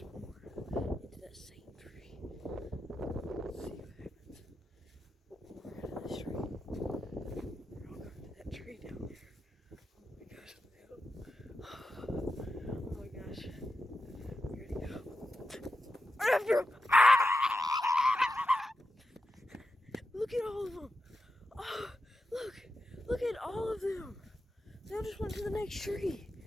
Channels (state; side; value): normal; both; correlation 0.88